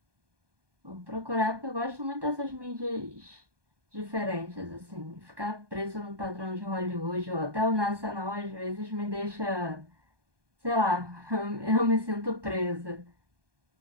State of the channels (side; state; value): left; late; 1.2 ms